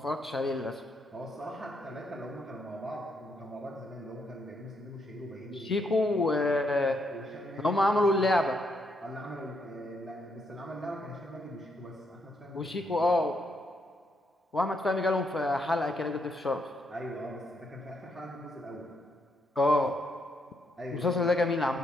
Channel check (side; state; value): both; normal; correlation 0.76